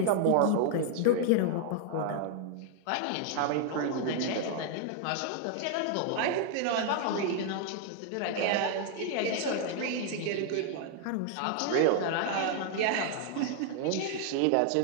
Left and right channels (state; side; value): different; both; correlation 0.00